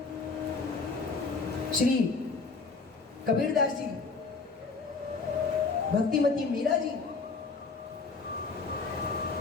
श्री कबीरदास जी, भक्तिमती मीरा जी,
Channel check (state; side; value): quieter; right; 4.4 dB